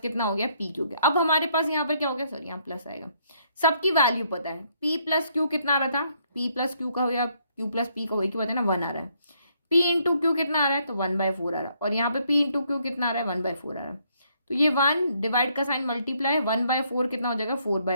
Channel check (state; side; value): inverted; both; correlation -0.70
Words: हो गया, p q हो गया। अब हमारे पास यहाँ पर क्या हो गया, सॉरी यहाँ प्लस आएगा। सबकी वैल्यू पता है, p + q कितना आ रहा था, p + q का हो गया, q + p का हो गया, कि पता है ना 1 आ रहा है। p × q कितना आ रहा है, तो 1/4 आ रहा है, और यहाँ पे p × q कितना आ रहा है, 1/4 आ रहा है। तो ये 1 डिवाइड का साइन मल्टीप्लाई, 1/4 कितना हो जाएगा,